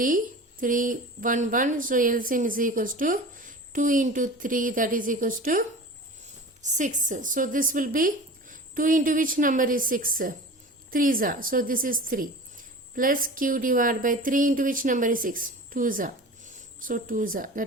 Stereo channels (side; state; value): both; normal; correlation 0.36